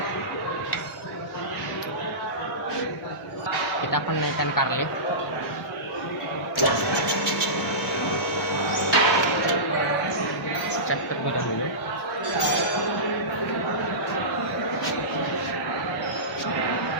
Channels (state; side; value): normal; both; correlation -0.20